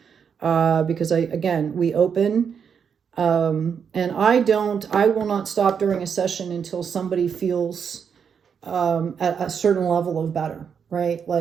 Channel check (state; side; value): quieter; left; 7.0 dB